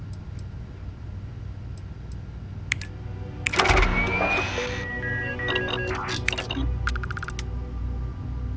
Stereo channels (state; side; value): identical; both; correlation 1.00